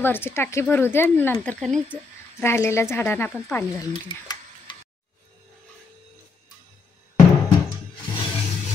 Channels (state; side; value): quieter; right; 4.2 dB